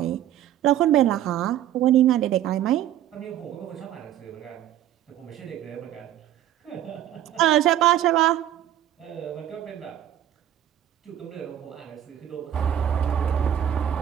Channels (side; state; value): left; quieter; 11.6 dB